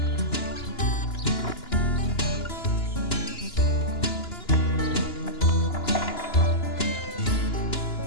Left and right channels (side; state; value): right; late; 2.9 ms